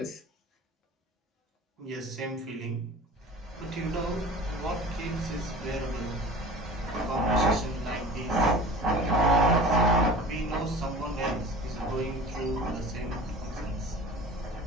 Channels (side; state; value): both; normal; correlation 0.40